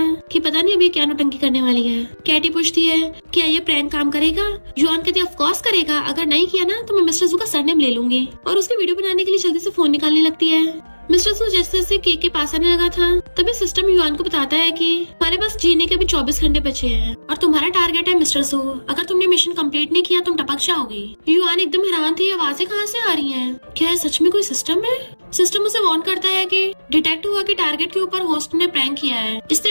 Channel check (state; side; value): inverted; both; correlation -1.00